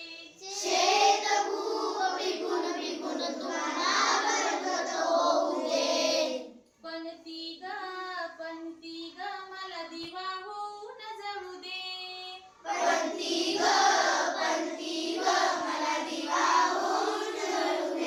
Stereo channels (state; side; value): identical; both; correlation 1.00